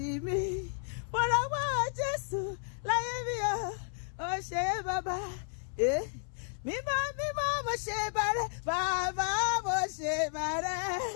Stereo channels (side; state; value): right; silent; 56 dB below the other